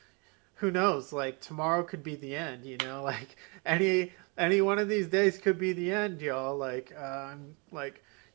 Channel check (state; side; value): quieter; left; 31.2 dB